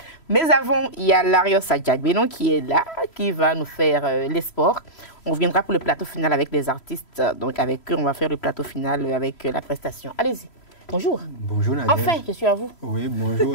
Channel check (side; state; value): right; late; 3.0 ms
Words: Mais avant, il y a Larios Adjagbenon qui est là, qui va nous faire les sports. On reviendra pour le plateau final avec les artistes. Donc avec eux, on va faire le plateau final avec la prestation. Allez-y. Bonjour. Bonjour Nadia. Enfin, je suis à vous. Oui, bonjour